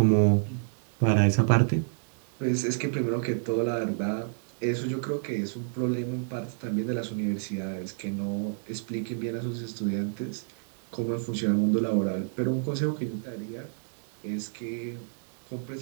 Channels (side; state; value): left; silent; 58 dB below the other